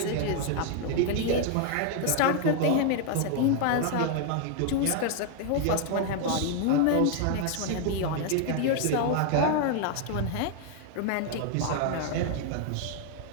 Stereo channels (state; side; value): different; both; correlation 0.00